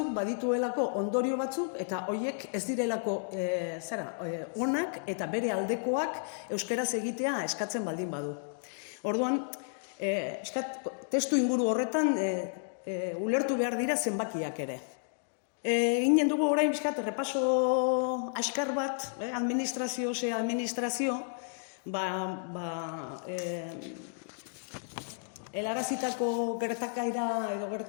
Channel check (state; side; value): silent; right; digital silence